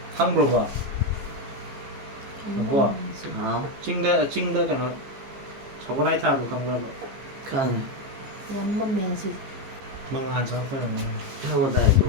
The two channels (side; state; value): left; late; 15 ms